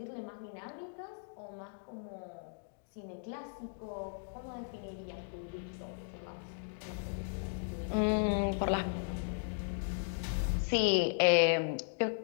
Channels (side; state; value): right; silent; digital silence